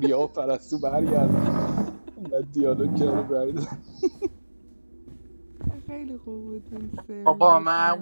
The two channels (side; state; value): both; inverted; correlation -1.00